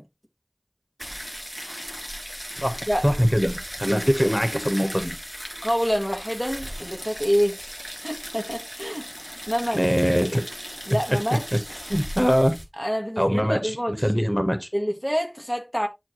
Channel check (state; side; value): identical; both; correlation 1.00